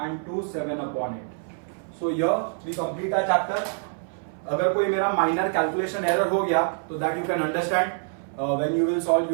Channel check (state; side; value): silent; left; 59 dB below the other